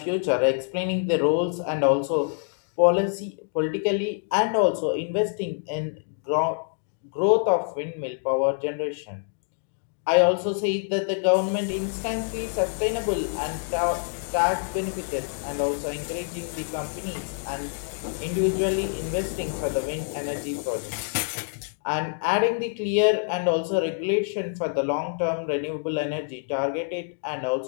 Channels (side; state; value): right; silent; digital silence